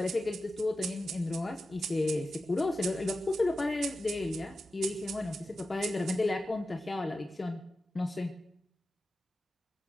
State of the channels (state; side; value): normal; both; correlation 0.92